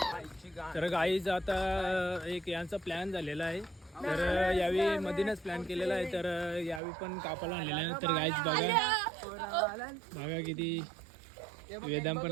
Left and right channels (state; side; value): drops out; left; at 6.8 s